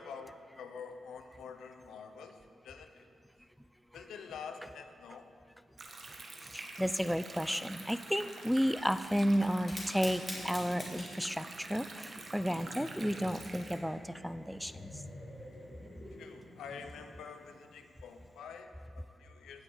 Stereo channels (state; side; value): normal; both; correlation 0.97